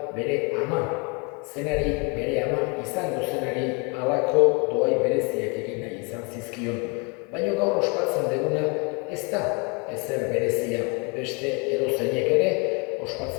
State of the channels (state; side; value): quieter; right; 32.1 dB